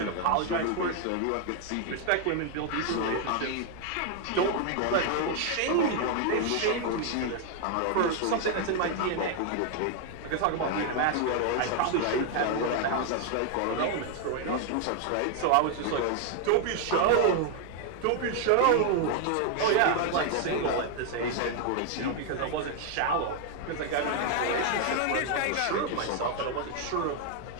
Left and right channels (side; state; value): both; different; correlation 0.00